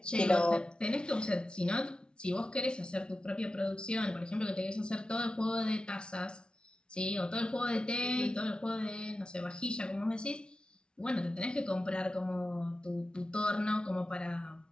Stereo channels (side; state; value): right; late; 0.055 ms